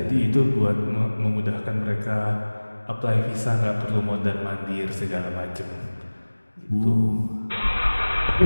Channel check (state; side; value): inverted; both; correlation -1.00